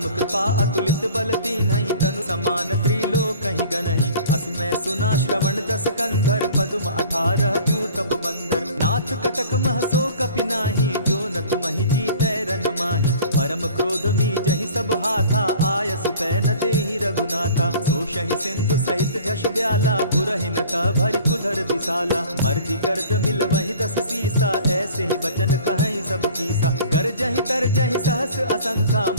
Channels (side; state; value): both; inverted; correlation -0.46